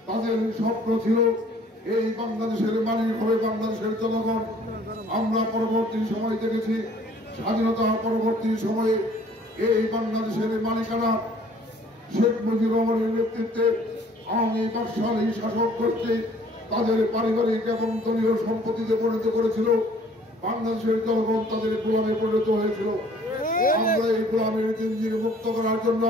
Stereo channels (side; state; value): both; normal; correlation 0.56